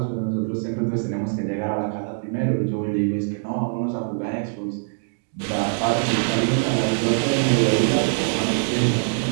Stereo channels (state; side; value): silent; left; digital silence